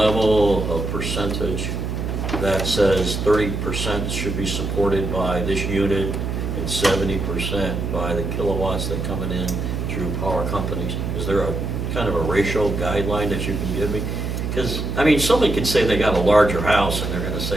of percentage that says 30% should be supported by this unit and 70% by the kilowatts that coming in through power companies? Is there a kind of a ratio guideline that you can give me? Because, I mean, somebody could say they got a larger house and they're going to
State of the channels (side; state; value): right; noise; hum, 3 dB below the sound